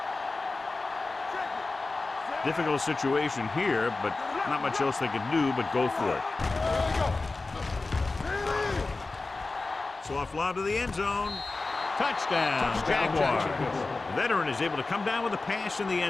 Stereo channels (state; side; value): quieter; right; 3.5 dB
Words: Check it. Difficult situation here, but not much else they can do but go for it. There we go. Soft lob to the end zone. Touchdown, Jaguars. The veteran is able to come down with a pass in the